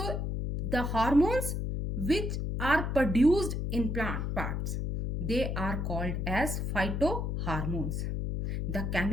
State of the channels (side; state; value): left; noise; hum, 2 dB below the sound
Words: the hormones which are produced in plant parts, they are called as phytohormones. The